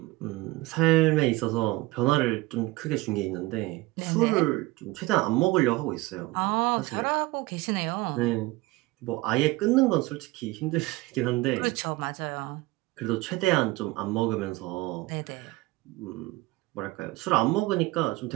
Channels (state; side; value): quieter; left; 20.6 dB